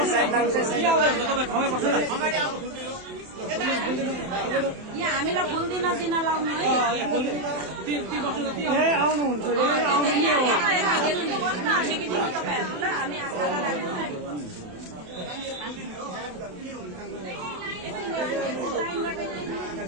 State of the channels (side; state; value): left; late; 27 ms